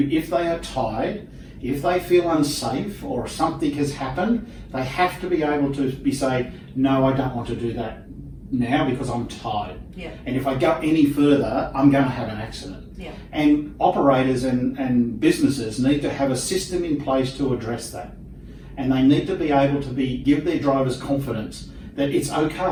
if they are tired, if they feel unsafe or something has happened, they have to be able to say, no, I don't want to do that now because I'm tired. Yeah. And if I go any further, I'm going to have an accident. Yeah. And operators and businesses need to have a system in place to address that. And they need to be able to give their drivers confidence that it's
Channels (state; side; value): identical; both; correlation 1.00